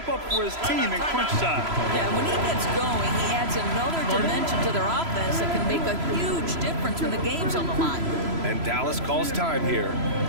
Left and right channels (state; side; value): late; left; 3.0 ms